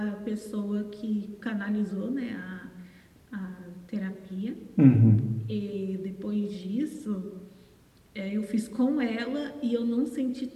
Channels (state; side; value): identical; both; correlation 1.00